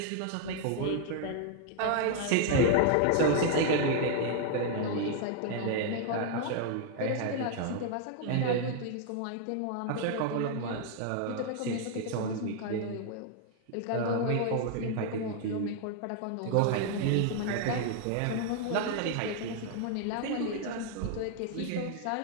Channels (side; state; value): both; different; correlation 0.00